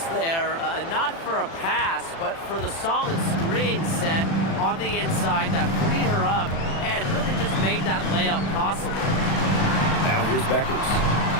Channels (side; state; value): right; late; 36 ms